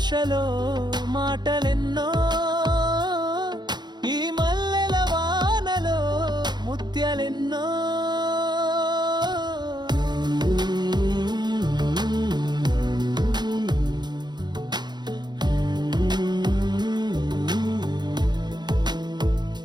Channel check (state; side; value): late; left; 0.21 ms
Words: మాటలెన్నో, ఈ మల్లెల వానలో ముత్యాలెన్నో.